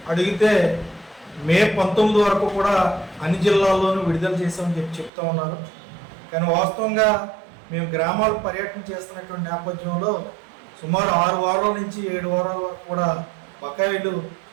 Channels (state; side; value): drops out; left; at 5.1 s